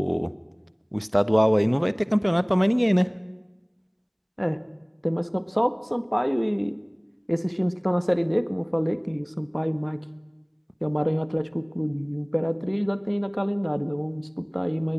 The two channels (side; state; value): both; identical; correlation 1.00